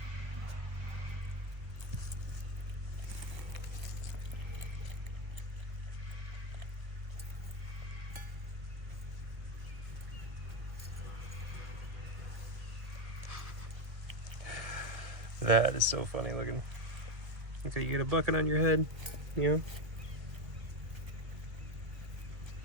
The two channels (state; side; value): late; left; 1.7 ms